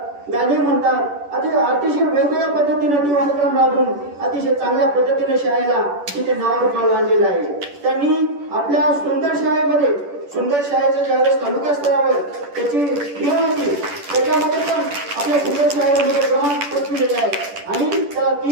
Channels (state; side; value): late; left; 10 ms